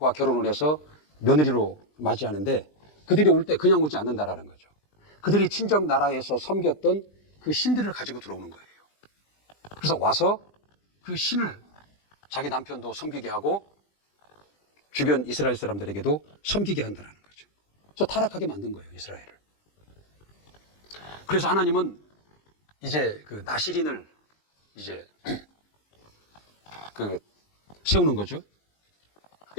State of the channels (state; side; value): late; right; 20 ms